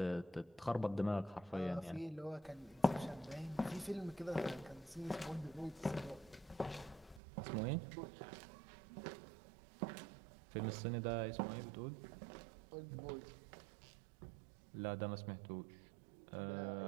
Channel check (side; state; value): left; drops out; at 7.2 s